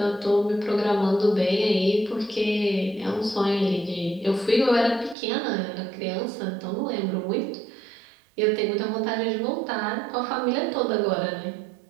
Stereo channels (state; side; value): drops out; left; at 5.2 s